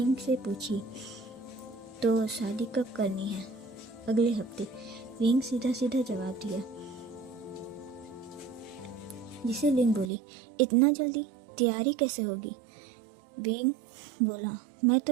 से पूछी, तो शादी कब करनी है? अगले हफ्ते। विंग सीधा जवाब दिया, जिसे लिंग बोली, इतना जल्दी? तैयारी कैसे होगी? विंग बोला, मैं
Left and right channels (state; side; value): drops out; left; at 10.1 s